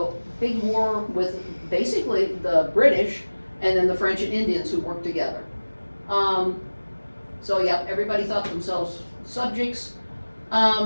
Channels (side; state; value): both; inverted; correlation -1.00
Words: big war with basically the British and then the French and Indians who worked together. So yeah, everybody thought themselves subjects.